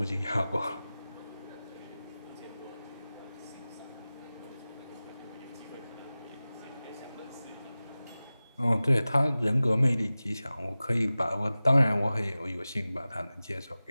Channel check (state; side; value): inverted; both; correlation -0.97